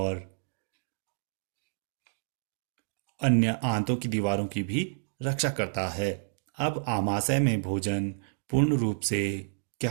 अन्य आंतों की दीवारों की भी रक्षा करता है। अब आमाशय में भोजन पूर्ण रूप से क्या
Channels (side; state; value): left; silent; digital silence